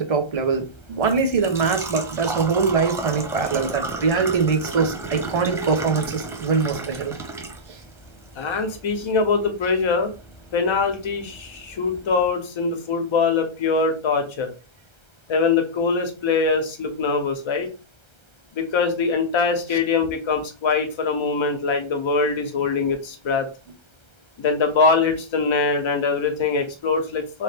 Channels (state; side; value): late; right; 1.3 ms